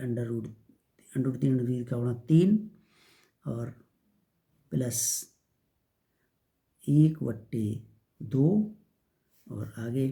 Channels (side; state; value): both; identical; correlation 1.00